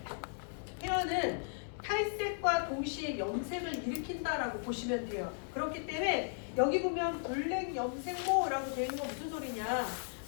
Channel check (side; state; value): right; silent; digital silence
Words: 페어는 탈색과 동시에 염색을 일으킨다라고 보시면 돼요. 그렇기 때문에 여기 보면 블랙 염색모라고 되어 있는 건 무슨 소리냐?